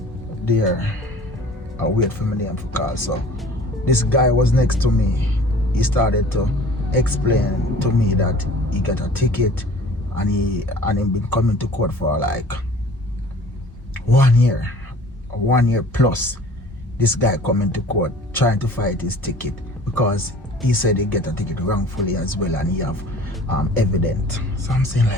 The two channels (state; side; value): normal; both; correlation 0.47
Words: There, I wait for my name to call. So this guy was next to me. He started to explain to me that he got a ticket and he been coming to court for like 1 year. 1 year plus. This guy coming to court trying to fight his ticket because he said he get a ticket wrongfully as well and he have evidence. So I'm saying